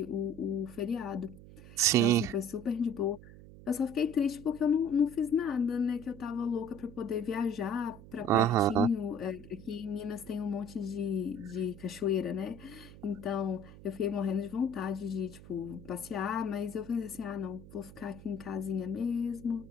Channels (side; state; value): right; noise; hum, 17 dB below the sound